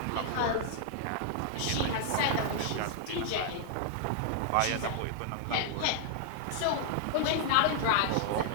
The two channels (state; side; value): different; both; correlation -0.01